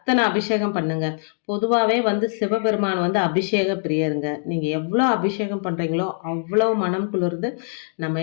அபிஷேகம் பண்ணுங்க. பொதுவாவே வந்து சிவபெருமான் வந்து அபிஷேக பிரியருங்க. நீங்க எவ்வளவு அபிஷேகம் பண்றீங்களோ அவ்வளவு மனம் குளிர்ந்து நம்ம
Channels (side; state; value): right; silent; digital silence